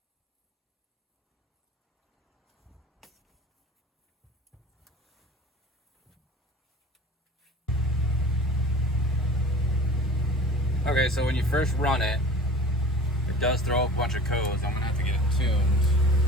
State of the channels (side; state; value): both; normal; correlation 0.42